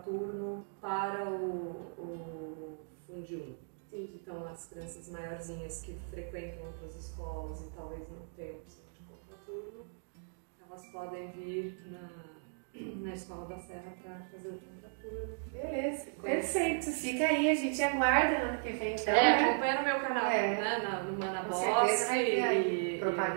para o Fundi 1. Então as crianças maiorzinhas que frequentam outras escolas e talvez não tenham opção de contraturno, elas podem vir na Escola da Serra para fazer o contraturno. Beleza, perfeito. Fica aí, a gente aguarda no ano que vem. Então, acompanha no meu canal, né, no Mana Boss. Com certeza vai ter aí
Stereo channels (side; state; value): left; silent; digital silence